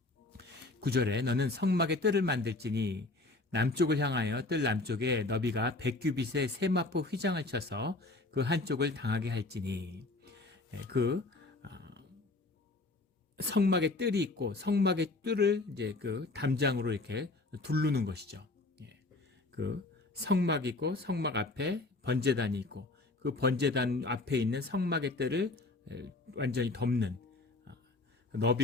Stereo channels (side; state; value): right; quieter; 3.1 dB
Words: 9절에 너는 성막의 뜰을 만들지니 남쪽을 향하여 뜰 남쪽에 너비가 100규빗의 세마포 휘장을 쳐서 그 한쪽을 당하게 할지니, 그 성막의 뜰이 있고 성막의 뜰을 이제 그 담장으로 이렇게 두르는 것이죠. 그 성막이 있고 성막 앞에 번제단이 있고 그 번제단 앞에 있는 성막의 뜰을 완전히 덮는,